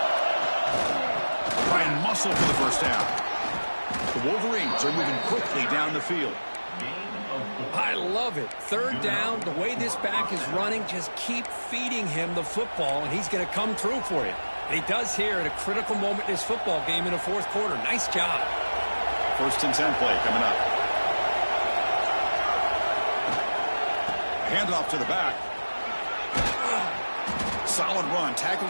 Try and muscle for the first down. The Wolverines are moving quickly down the field. I love it. Third down, the way this back is running, just keep feeding him the football, and he's going to come through for you. And he does here at a critical moment in this football game in the fourth quarter. Nice job. First and 10 play coming up. Handoff to the back. Solid run, tackled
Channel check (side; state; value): both; inverted; correlation -1.00